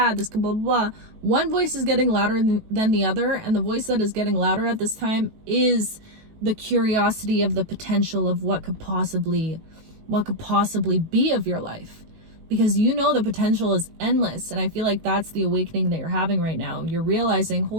this could blah, blah, blah. One voice is getting louder than the other, and the voice that is getting louder at this time is the curiosity of the potential of what could possibly be of your life, because you know the potential is endless. And I feel like that's the awakening that you're having right now. You're realizing,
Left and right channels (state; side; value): late; left; 19 ms